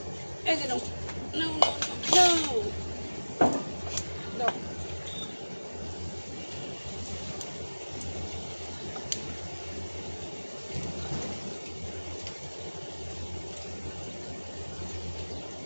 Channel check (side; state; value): both; inverted; correlation -1.00